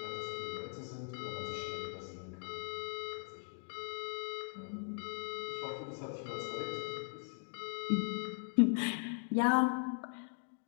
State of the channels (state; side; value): silent; right; 51 dB below the other